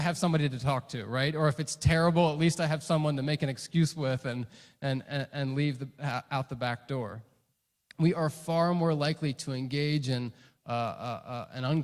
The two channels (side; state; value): both; identical; correlation 1.00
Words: have somebody to talk to, right? Or if it's terrible, at least I have someone to make an excuse with and leave out the back door. We are far more likely to engage in an